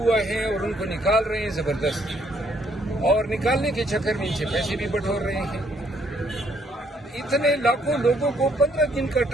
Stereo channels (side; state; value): both; normal; correlation 0.68